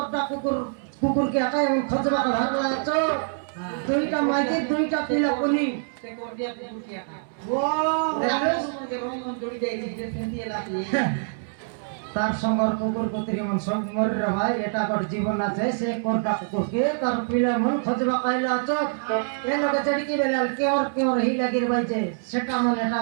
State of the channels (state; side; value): silent; left; 61 dB below the other